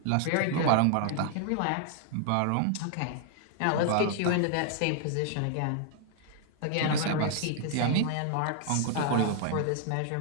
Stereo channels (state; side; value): different; both; correlation 0.00